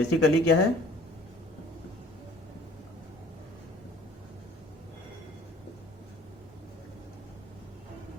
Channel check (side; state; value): both; normal; correlation 0.51